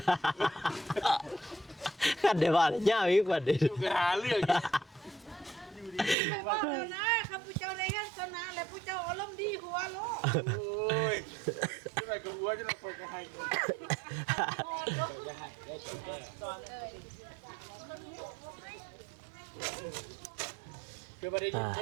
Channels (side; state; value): left; drops out; at 6.2 s